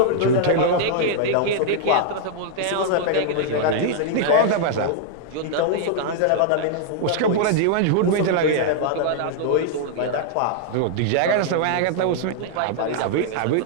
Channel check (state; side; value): different; both; correlation -0.01